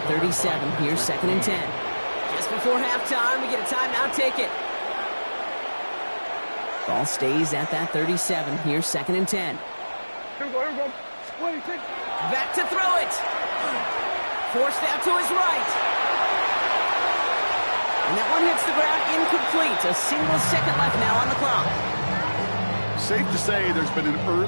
37. Here's 2nd and 10. Just before halftime, we get a timeout ticket. Ball stays at that 37. Here's 2nd and 10. Here we go. Back to throw it. Forced out to his right. And that one hits the ground incomplete. A single second left now on the clock. Safe to say there's been an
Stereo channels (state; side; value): inverted; both; correlation -1.00